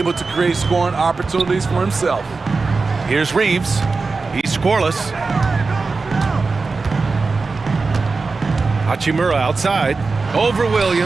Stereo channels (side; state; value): left; quieter; 4.1 dB